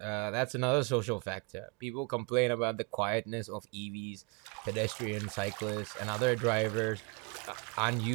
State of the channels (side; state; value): left; quieter; 31.9 dB